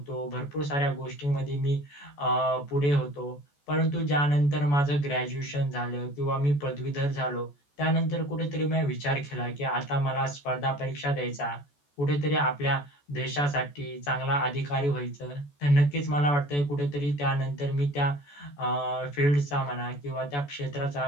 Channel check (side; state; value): right; late; 14 ms